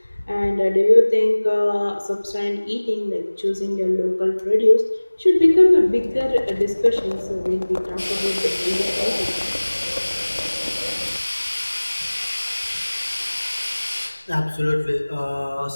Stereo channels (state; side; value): inverted; both; correlation -1.00